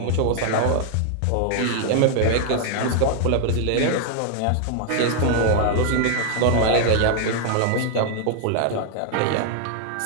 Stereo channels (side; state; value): both; different; correlation 0.00